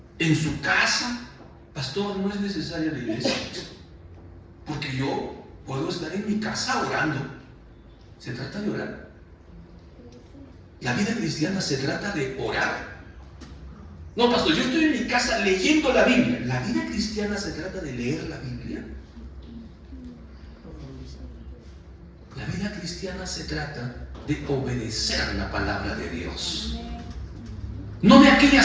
En su casa. Pastor, no es necesaria la iglesia, porque yo puedo estar en mi casa orando. Se trata de orar. La vida cristiana se trata de orar. No, pastor, yo estoy en mi casa leyendo la Biblia. La vida cristiana se trata de leer la Biblia. La vida cristiana se trata de obedecer la palabra de Dios. No de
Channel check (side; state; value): both; identical; correlation 1.00